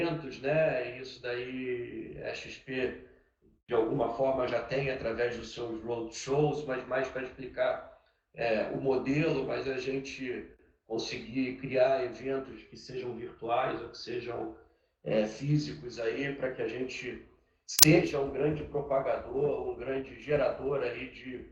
né? Isso daí a XP de alguma forma já tem através dos seus roadshows, mas mais para explicar o modelo, mas a gente conseguir criar eventos que sejam virtuais ou que sejam físicos aí, para que a gente seja um grande propagador, um grande gerador aí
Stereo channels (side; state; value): both; identical; correlation 1.00